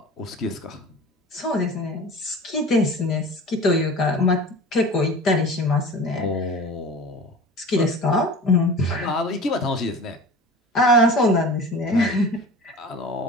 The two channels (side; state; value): both; normal; correlation 0.37